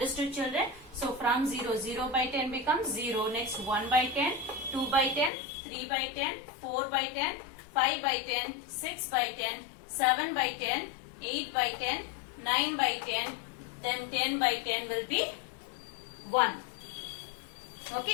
children? So from 0, 0 by 10 becomes 0. Next 1 by 10, 2 by 10, 3 by 10, 4 by 10, 5 by 10, 6 by 10, 7 by 10, 8 by 10, 9 by 10, then 10 by 10 will be 1.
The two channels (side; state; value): right; drops out; at 5.3 s